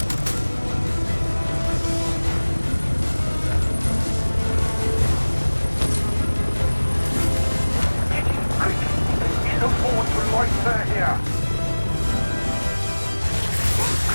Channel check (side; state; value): both; inverted; correlation -1.00